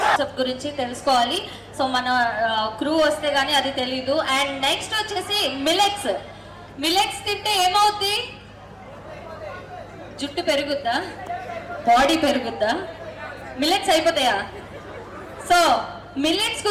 గురించి తెలుసుకోవాలి. సో మన క్రూ వస్తే గానీ అది తెలీదు. అండ్ నెక్స్ట్ వచ్చేసి మిలెట్స్. మిలెట్స్ తింటే ఏమవుద్ది? జుట్టు పెరుగుద్దా? బాడీ పెరుగుద్దా? మిలెట్స్ అయిపోతాయా? సో మిల్లెట్స్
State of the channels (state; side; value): identical; both; correlation 1.00